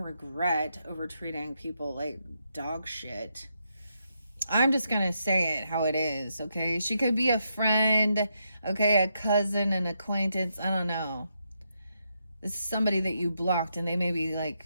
over treating people like dog shit. I'm just gonna say it how it is, okay? She could be a friend, okay, a cousin, an acquaintance, I don't know. This is somebody that you blocked, and they may be like,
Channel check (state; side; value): inverted; both; correlation -0.81